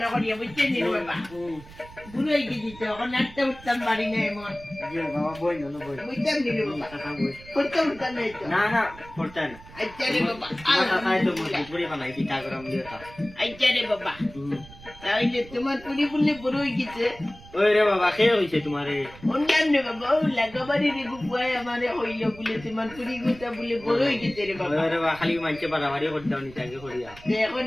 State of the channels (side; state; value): right; noise; rumble, 19 dB below the sound